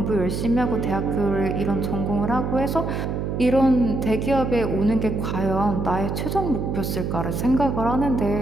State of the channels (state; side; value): noise; right; hum, 2 dB below the sound